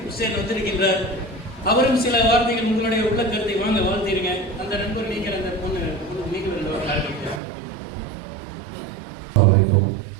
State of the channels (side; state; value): left; drops out; at 7.4 s